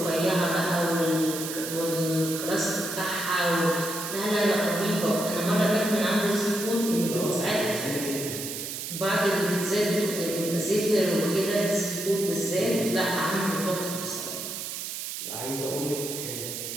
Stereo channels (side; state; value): right; noise; hiss, 6 dB below the sound